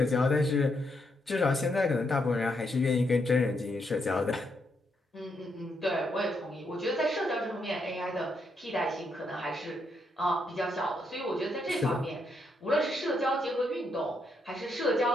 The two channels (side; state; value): both; normal; correlation 0.78